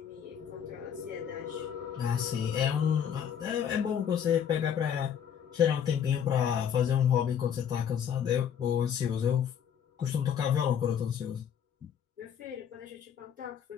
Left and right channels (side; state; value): right; quieter; 8.5 dB